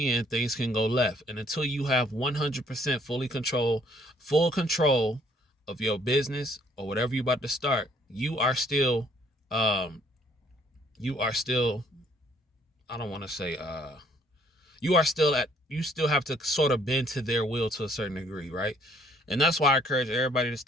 things can go left. And until you have 100% full control of your business or whatever you're about to start, you are still, I don't want to say, you still have to sort of bend to their will to a certain degree, right? And that's why I encourage everybody to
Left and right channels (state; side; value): normal; both; correlation 0.64